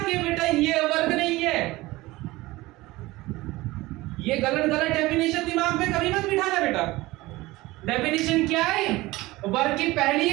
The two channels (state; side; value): quieter; left; 19.7 dB